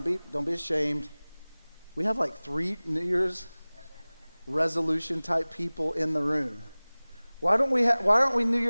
be ashamed. We have like 3 New Year's resolution type people in the room. Why aren't we New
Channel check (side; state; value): both; inverted; correlation -1.00